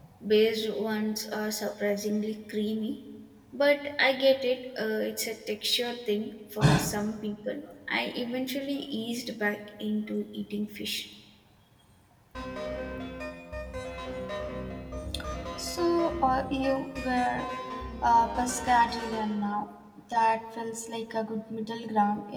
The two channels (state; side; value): identical; both; correlation 1.00